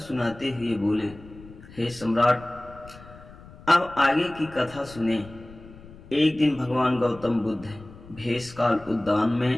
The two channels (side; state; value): left; noise; rumble, 19 dB below the sound